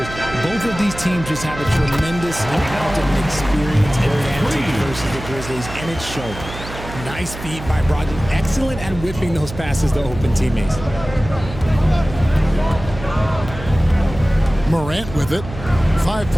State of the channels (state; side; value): noise; right; hum, 11 dB below the sound